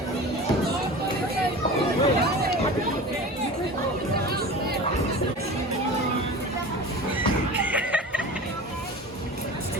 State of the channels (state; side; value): normal; both; correlation 0.34